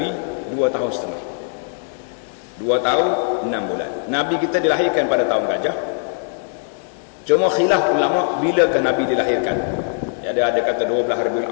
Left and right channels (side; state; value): right; silent; digital silence